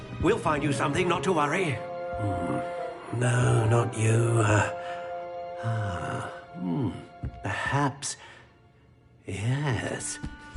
We'll find you something, not to worry. No, not you. Perhaps... Yes.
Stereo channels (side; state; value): both; identical; correlation 1.00